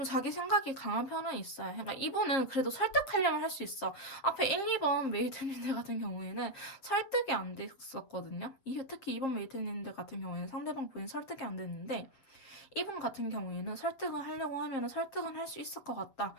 자기 생각이 강한 편은 있어요. 그러니까 이분은 그래도 설득하려면 할 수 있어. 앞에 1, 2번 메이트님들 같은 경우에는 설득이 안 됐었거든요. 특히 2번 메이트님들 같은 경우에는 상대방 분이 설득이 안 됐는데 이분 같은 경우에는 설득을 하려고 하면 설득은 할 수 있을 것 같다.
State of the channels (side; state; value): right; late; 7.5 ms